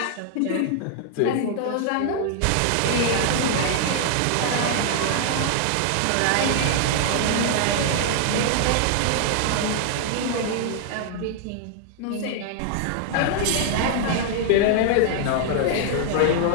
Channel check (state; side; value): different; both; correlation -0.01